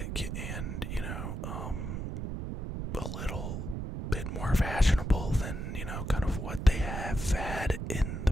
and, a little bit more fashionable than, kind of what they have had in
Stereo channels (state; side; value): noise; right; rumble, 4 dB below the sound